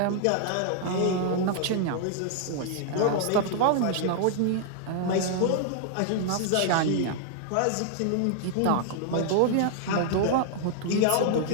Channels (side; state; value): both; different; correlation -0.01